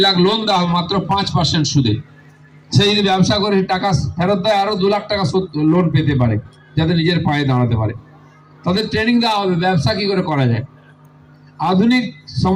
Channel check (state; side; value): identical; both; correlation 1.00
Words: লাখ লোন দেওয়া হবে মাত্র 5% সুদে। সে যদি ব্যবসা করে টাকা ফেরত দেয়, আরো 2 লাখ টাকা লোন পেতে পারে, যাতে নিজের পায়ে দাঁড়াতে পারে। তাদের ট্রেনিং দেওয়া হবে ব্যবসা কি করে করা যায়, আধুনিক